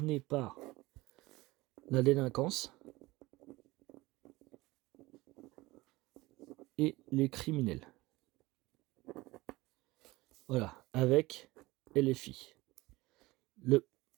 par la délinquance et les criminels. Voilà, avec LFI. Le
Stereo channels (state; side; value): quieter; left; 20.4 dB